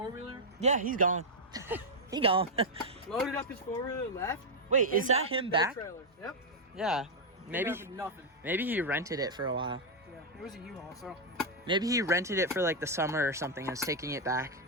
Yeah, he's gone. He gone. Loaded up his four-wheeler, left. Wait, is that him back? Trailer. Yep. Yeah, Nothing. maybe he rented it for a while. Yeah, it was a U-Haul, so. Maybe he rented it for, like, the summer or something and was taking it back.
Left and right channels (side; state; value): both; normal; correlation -0.02